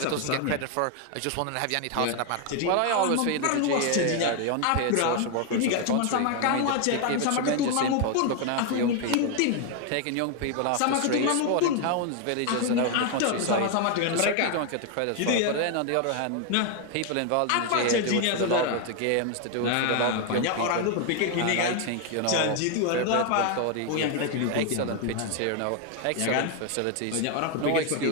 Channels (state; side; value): different; both; correlation 0.01